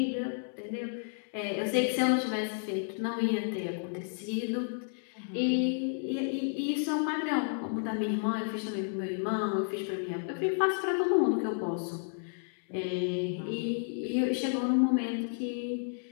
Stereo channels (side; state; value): right; silent; 57 dB below the other